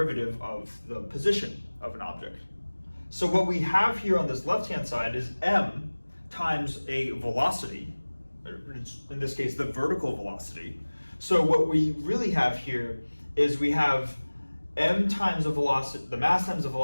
of the position of an object. So what we have here on this left-hand side is m times a velocity, in this case, the vertical velocity. So what we really have here is we have m times the velocity, the mass times the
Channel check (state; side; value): inverted; both; correlation -1.00